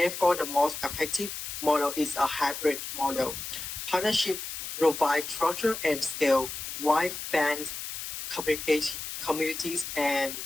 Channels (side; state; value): left; noise; hiss, 7 dB below the sound